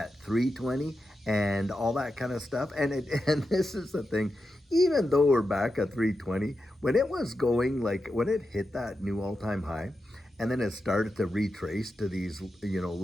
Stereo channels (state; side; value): normal; both; correlation 0.89